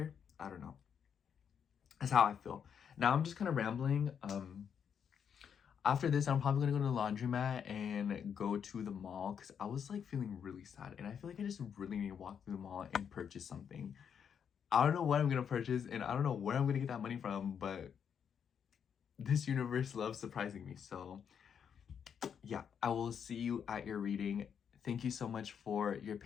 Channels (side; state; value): right; quieter; 7.7 dB